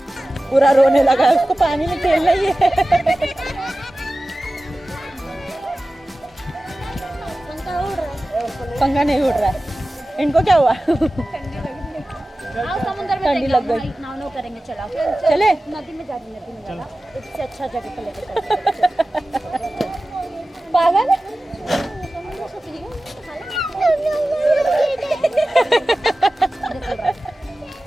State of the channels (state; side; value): normal; both; correlation 0.96